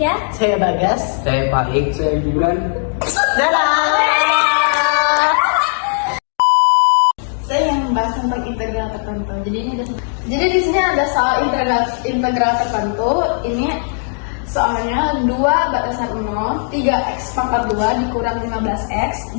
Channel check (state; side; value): silent; right; 68 dB below the other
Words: Saya Bagas. Saya Faik. Saya Gibran. saya yang membahas tentang integral tertentu. Jadi di sini ada soal integral tertentu. Ini soalnya 2 batasan 0, 3x pangkat 2 dikurang 15x